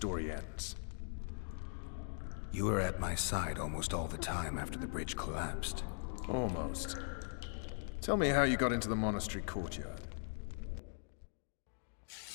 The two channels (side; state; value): right; silent; digital silence